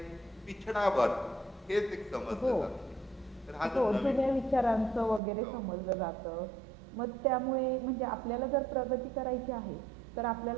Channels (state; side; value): drops out; left; at 5.2 s